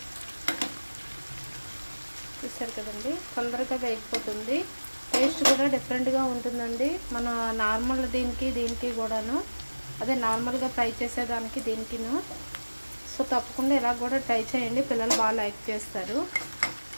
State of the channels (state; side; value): inverted; both; correlation -1.00